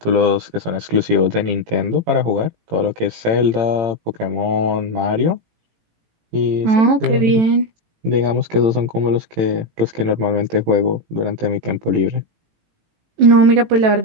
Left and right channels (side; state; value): left; late; 18 ms